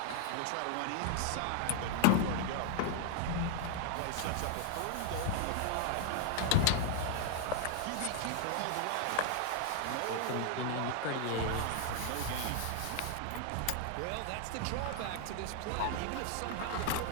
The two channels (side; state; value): both; different; correlation 0.00